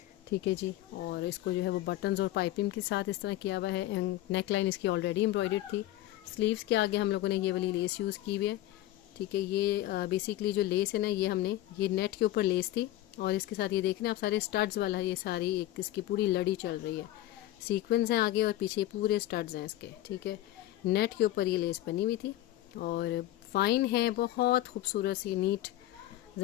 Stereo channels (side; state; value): right; quieter; 14.9 dB